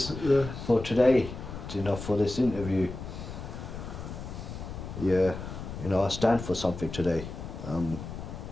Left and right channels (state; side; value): noise; left; rumble, 9 dB below the sound